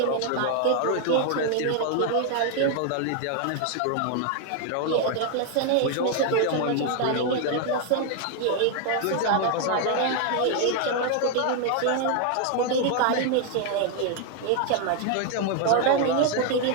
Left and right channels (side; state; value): both; different; correlation 0.00